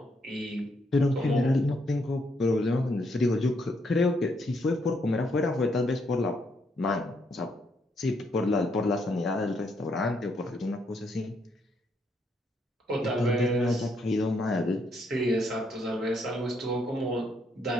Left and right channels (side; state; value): both; normal; correlation 0.74